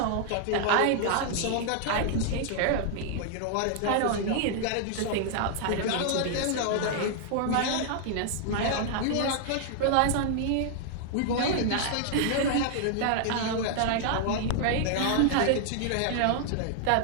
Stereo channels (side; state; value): both; different; correlation 0.00